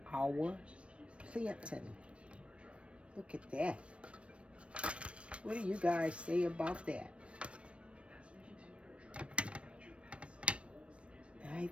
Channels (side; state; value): left; late; 0.061 ms